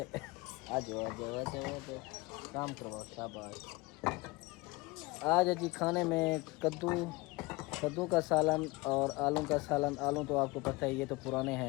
आ जाओ आ जाओ आ जाओ आ जाओ, काम करवाओ, शाबाश। आज जी खाने में कद्दू का सालन और आलू का सालन। आलू तो आपको पता है ये तो पुराने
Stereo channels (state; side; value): quieter; right; 23.1 dB